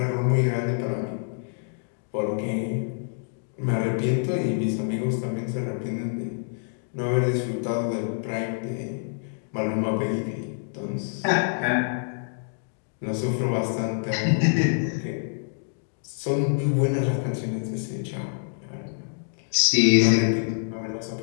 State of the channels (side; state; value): right; silent; digital silence